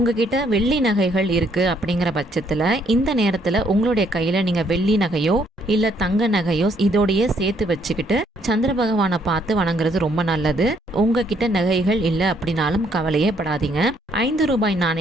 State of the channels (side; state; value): both; normal; correlation 0.68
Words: வெள்ளி நகைகள் இருக்கு அப்படிங்கிற பட்சத்துல இந்த நேரத்துல உங்களுடைய கையில நீங்க வெள்ளி நகையோ இல்ல தங்க நகையோ இதோடைய சேர்த்து வச்சுக்கிட்டு சந்திர பகவானை பார்த்து வணங்குறது ரொம்ப நல்லது. உங்ககிட்ட நகைகள் இல்ல அப்படின்னாலும் கவலையே படாதீங்க. 5 ரூபாய்